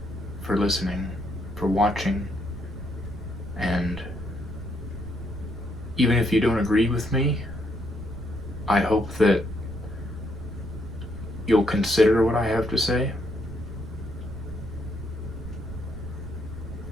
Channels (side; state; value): right; noise; rumble, 10 dB below the sound